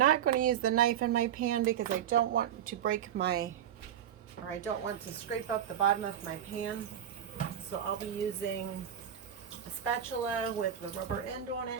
going to use the knife in my pan because I don't want to I don't want to scrape up the bottom of my pan. So I'll be using a spatula with the rubber end on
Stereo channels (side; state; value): left; quieter; 9.7 dB